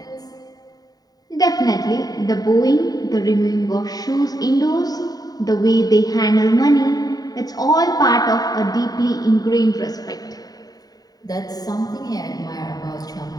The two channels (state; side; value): late; right; 0.18 ms